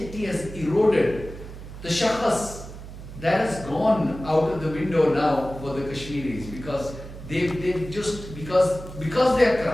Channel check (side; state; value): right; noise; hum, 13 dB below the sound